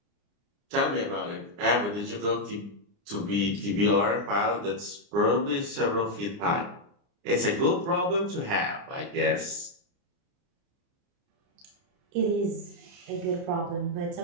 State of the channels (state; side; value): late; left; 29 ms